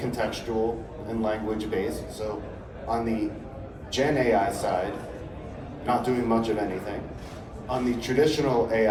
and language-based. So on the Gen AI side, not doing much of anything. On the traditional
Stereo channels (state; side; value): identical; both; correlation 1.00